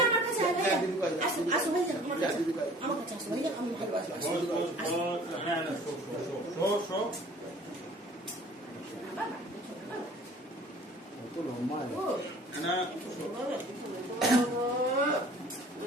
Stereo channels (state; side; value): normal; both; correlation 0.49